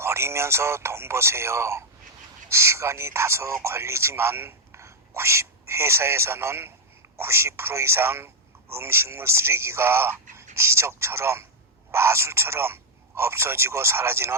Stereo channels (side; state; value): both; normal; correlation -0.02